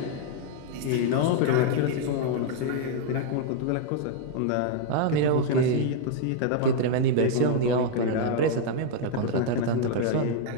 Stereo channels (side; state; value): both; different; correlation 0.00